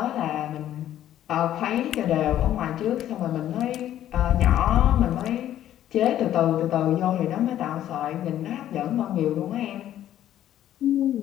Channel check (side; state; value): right; quieter; 11.9 dB